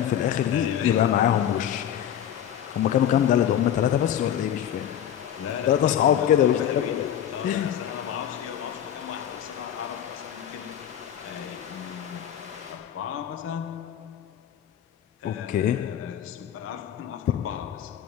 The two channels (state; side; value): quieter; right; 10.1 dB